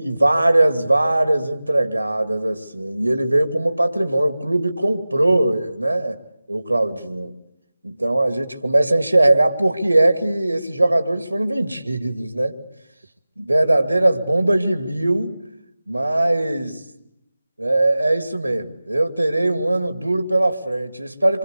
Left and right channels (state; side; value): inverted; both; correlation -0.96